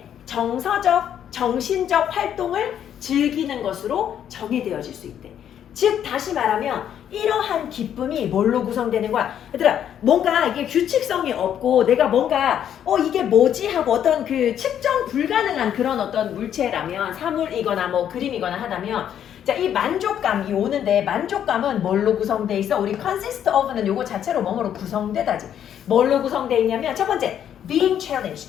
정서적, 정신적 활동을 즐기는 것으로 정의되어질 수 있대. 즉 다시 말하면 이러한 기쁨이 뭘로 구성되는 거야? 얘들아 뭔가 이게 규칙성이 없고 내가 뭔가 이게 뭐지 하고 어떤 그 측정 불가능한 그런 어떤 물체라면 사물이거나 뭐 그림이거나 하다면 자 이 만족감이 오는데 만족감은 뭘로 구성돼 있어? 우리 consist of는 요거 자체로 뭐뭐로 구성되다지. 뭘로 구성돼 있냐면 첫 번째 being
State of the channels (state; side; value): quieter; right; 9.7 dB